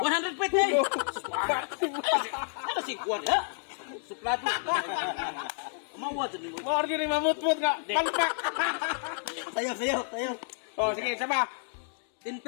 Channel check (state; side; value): silent; right; digital silence